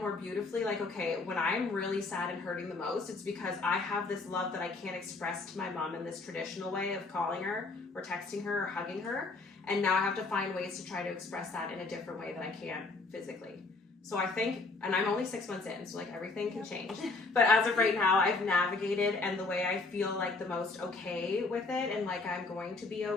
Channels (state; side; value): quieter; right; 3.7 dB